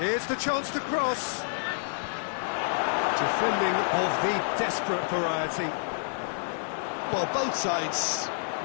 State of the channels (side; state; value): right; silent; 59 dB below the other